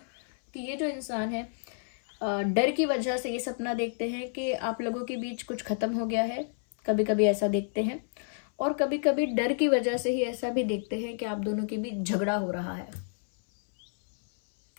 कि ये जो इंसान है, डर की वजह से ये सपना देखते हैं कि आप लोगों के बीच कुछ खत्म हो गया है। कभी कभी ऐसा देखते हैं, और कभी कभी डर की वजह से ही ऐसा भी देखते हैं कि आप दोनों के बीच झगड़ा हो रहा है,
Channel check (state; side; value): silent; right; 58 dB below the other